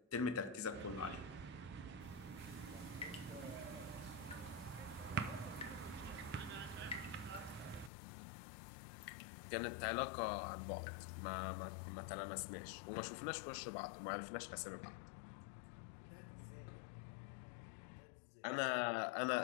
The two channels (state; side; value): drops out; right; at 7.9 s